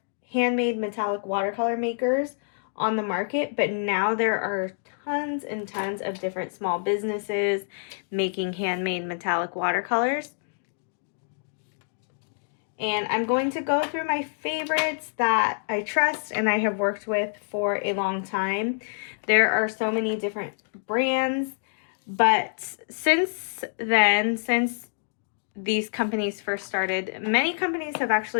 handmade metallic watercolor makers on the market, but now there are tons and tons of different small businesses making handmade metallic watercolors. And I'm going to go through my favorites that I trust and I have worked with for a long time. There are so many different brands, but since these companies first started, many companies have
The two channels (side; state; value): right; silent; digital silence